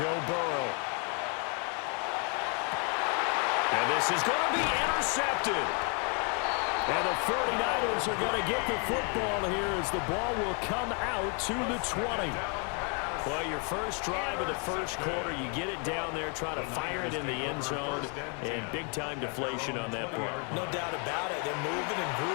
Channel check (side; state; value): right; quieter; 36.9 dB